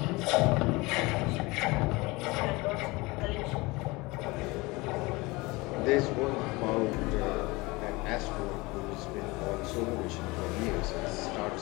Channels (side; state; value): right; quieter; 23.3 dB